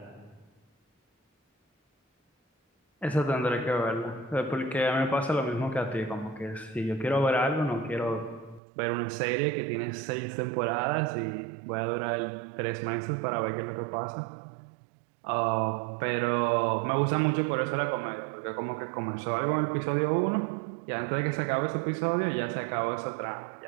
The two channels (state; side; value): drops out; left; at 8.6 s